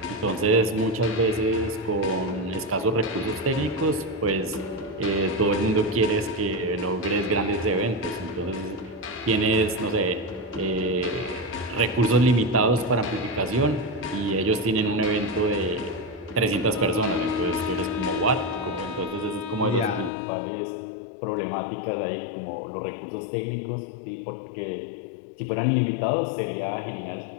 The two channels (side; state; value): right; drops out; at 20.1 s